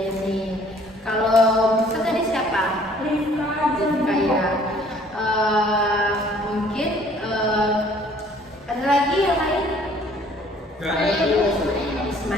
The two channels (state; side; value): normal; both; correlation 0.57